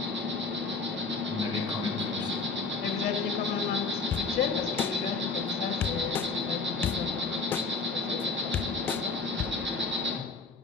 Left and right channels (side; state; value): right; quieter; 4.3 dB